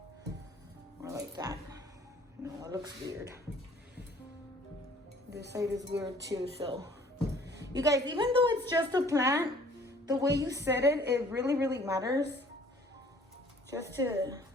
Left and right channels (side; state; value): both; normal; correlation 0.56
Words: Or like that. No, it looks weird. This side is weird too, so. You guys, even though it's just a plant, the way you set it, it really, really matters. Just to,